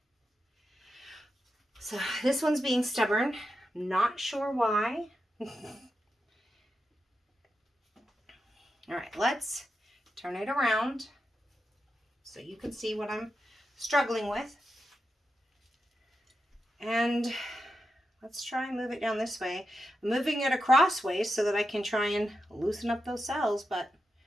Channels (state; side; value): normal; both; correlation 0.88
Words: So this one's being stubborn. Not sure why. All right, let's turn it around so you can see what I'm struggling with. And let's try and move it down this way. I'm moving it across ways so that I can try and loosen up those cells, but